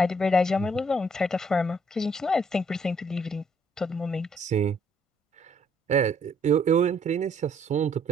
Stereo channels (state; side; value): normal; both; correlation 0.67